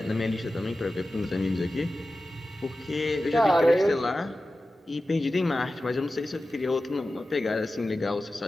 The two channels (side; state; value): both; normal; correlation 0.94